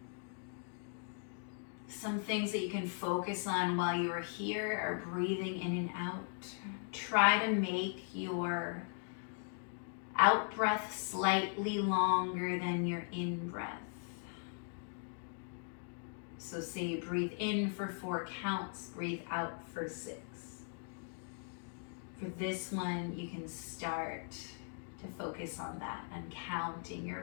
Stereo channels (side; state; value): right; silent; 52 dB below the other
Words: Some things that you can focus on while you are here are breathing in and out. Try to make your out breath slightly longer than your in breath. So say you breathe in for 4 counts, breathe out for 6. For this one, you can start to focus on that and counting